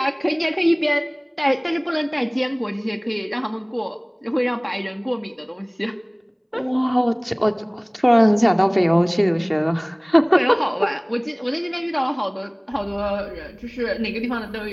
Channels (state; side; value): identical; both; correlation 1.00